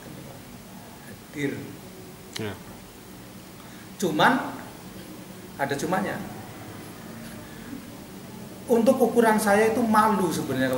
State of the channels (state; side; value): identical; both; correlation 1.00